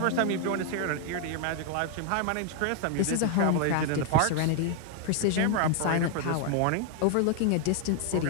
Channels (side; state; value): both; different; correlation 0.00